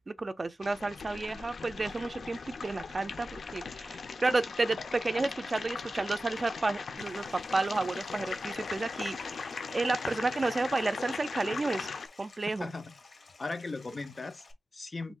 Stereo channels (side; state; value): both; normal; correlation 0.94